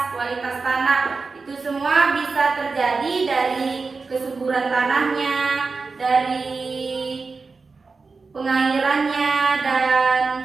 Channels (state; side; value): quieter; left; 4.3 dB